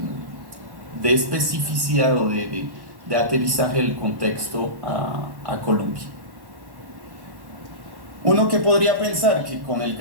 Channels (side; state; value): left; late; 1.1 ms